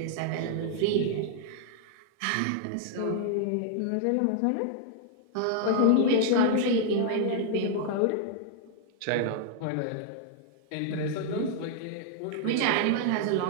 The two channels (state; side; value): different; both; correlation 0.00